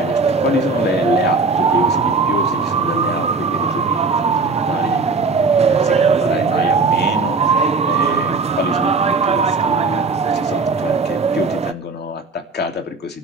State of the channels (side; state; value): left; quieter; 4.0 dB